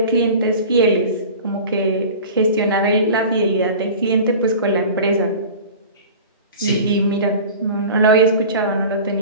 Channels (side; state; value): both; inverted; correlation -0.38